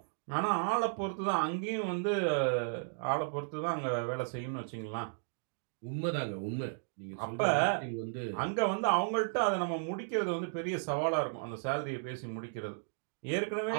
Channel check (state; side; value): silent; left; digital silence